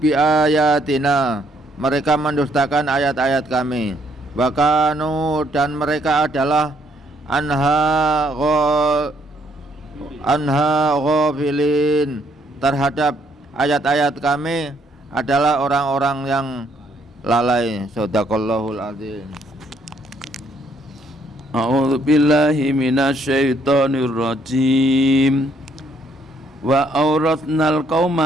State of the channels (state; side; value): normal; both; correlation 0.69